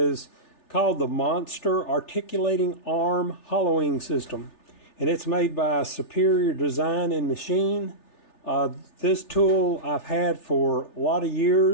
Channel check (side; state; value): right; late; 3.4 ms